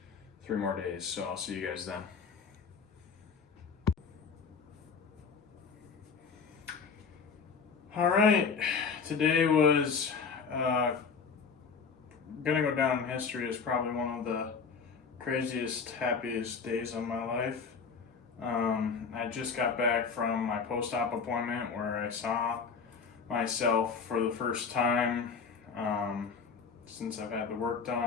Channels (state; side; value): quieter; right; 5.5 dB